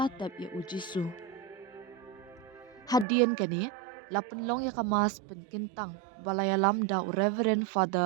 tap ya u Jisu. Hadian kani lapen long ya kamas penkentang balaya lamda u Reverend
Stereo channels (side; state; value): left; drops out; at 3.1 s